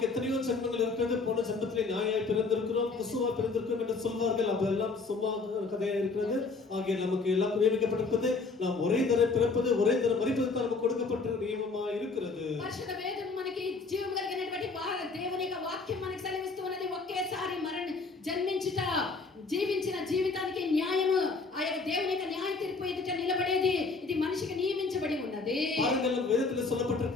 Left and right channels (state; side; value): quieter; right; 4.1 dB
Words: எத்தனையோ ஜென்மங்கள் இருக்கிறது, போன ஜென்மத்திலே நாயாய் பிறந்திருக்கிறோம், குசுவா பிறந்திருக்கிறோம் என்று சொல்வார்கள். அதெல்லாம் சும்மா கதையா இருக்கிறது. ஆகிய நமக்கு எல்லாம் நியமிக்கப்பட்டிருக்கிறது. நாம் ஒரே தரம் பிறப்பது, ஒரே தரம் மரிப்பது தான் நமக்கு கொடுக்கப்பட்ட நியமமா இருக்கிறது. పరిశుద్ధ వేదం మనకి జీవం కలిగినటువంటి దేవుని యొక్క వాక్యం మనకి సెలవిస్తూ ఉన్నది. ఒకేసారి జన్మించుట, జీవించిన జీవితానికి న్యాయము, ఆ యొక్క దేవుని యొక్క న్యాయ తీర్పు ఎదుట నిలబడేది ఇది మనిషికి నియమించబడి ఉన్నది. பாருங்கள், வேதத்தில்